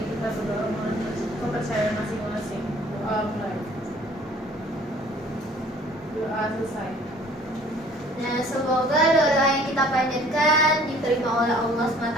kita berdoa mengenai kepercayaan masing-masing. Doa mulai. Doa selesai. Nah, semoga doa yang kita panjatkan diterima oleh Allah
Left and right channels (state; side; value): normal; both; correlation 0.54